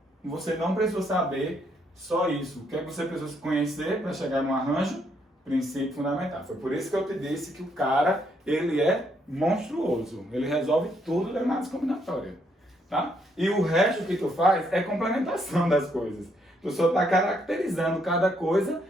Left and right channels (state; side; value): normal; both; correlation 0.73